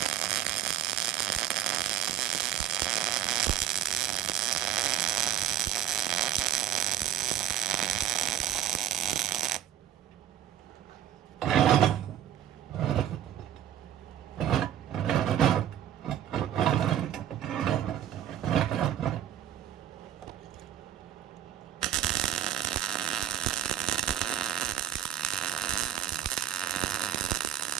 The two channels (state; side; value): quieter; left; 10.9 dB